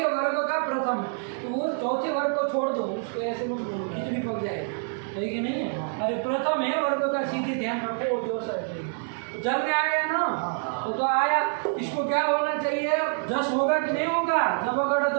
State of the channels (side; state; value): left; silent; 58 dB below the other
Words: वर्ग का प्रथम, तो वो चौथे वर्ग को छोड़ दो, उसको ऐसे में कितनी पक जाएगी, सही कि नहीं है? अरे प्रथम है वर्ग का, सीधे ध्यान रखो, जो सही तो जल में आ गया ना। तो आया, इसको क्या होना चाहिए? जस होगा कि नहीं होगा? जब अगर